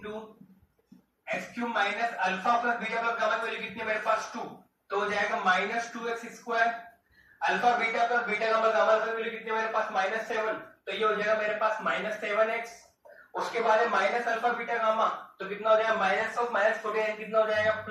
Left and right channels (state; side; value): identical; both; correlation 1.00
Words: x cube minus alpha plus beta plus gamma की वैल्यू कितनी है मेरे पास 2, तो हो जाएगा -2x square alpha beta plus beta gamma gamma की वैल्यू कितनी है मेरे पास -7, तो ये हो जाएगा मेरे पास -7x। उसके बाद है माइनस अल्फा बीटा गामा, तो कितना हो जाएगा माइनस ऑफ -14 कितना हो जाएगा